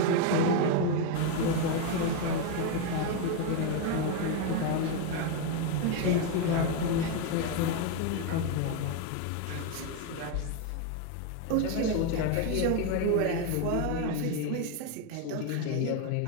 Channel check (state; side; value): different; both; correlation 0.02